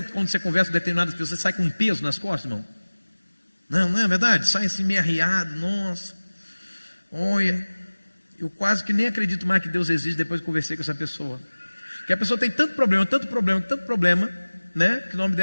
que quando você conversa com determinadas pessoas, você sai com um peso nas costas, irmão? Não é verdade? Sai assim meio arriado, nossa. Olha, eu quase que nem acredito mais que Deus existe depois que conversei com essa pessoa. Porque a pessoa tem tanto problema, né? Que o nome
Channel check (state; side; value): inverted; both; correlation -1.00